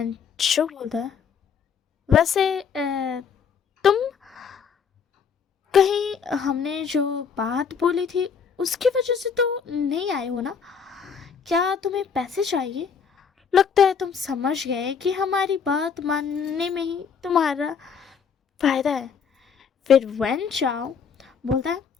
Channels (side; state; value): right; quieter; 6.5 dB